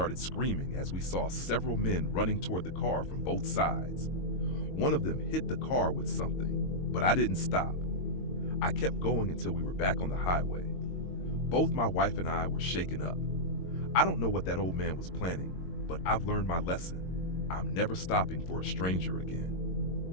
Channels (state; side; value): late; right; 22 ms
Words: screaming as we saw several men running toward the car from both sides. One of them hit the car with something, but I didn't stop. I kept going until we were back on the highway. Both my wife and I were shaken up. I don't know what that old man was planning, but I've learned my lesson. I'm never stopping for a stranger